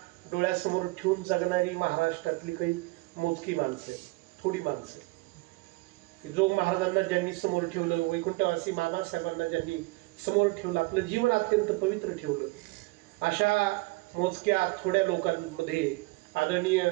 डोळ्यासमोर ठेवून जगणारी महाराष्ट्रातली काही मोजकी माणसं, थोडी माणसं, की जो महाराजांना ज्यांनी समोर ठेवलं, वैकुंठवासी मामासाहेबांना ज्यांनी समोर ठेवलं, आपलं जीवन अत्यंत पवित्र ठेवलं, अशा मोजक्या थोड्या लोकांमध्ये आदरणीय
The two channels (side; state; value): left; quieter; 23.8 dB